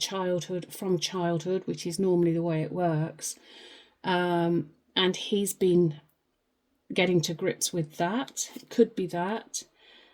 from childhood, which is normally the way it works, and he's been getting to grips with that. It could be that.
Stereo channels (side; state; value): both; identical; correlation 1.00